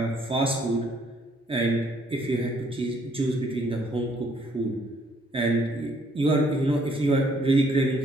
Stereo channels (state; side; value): normal; both; correlation 0.66